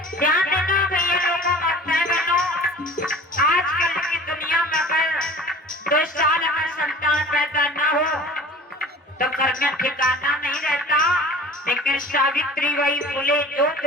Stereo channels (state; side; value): normal; both; correlation 0.43